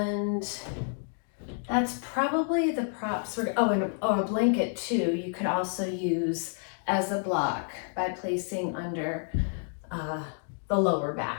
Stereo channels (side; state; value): right; silent; 58 dB below the other